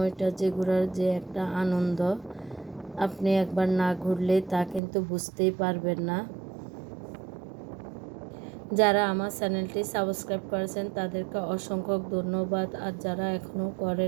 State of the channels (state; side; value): drops out; left; at 4.8 s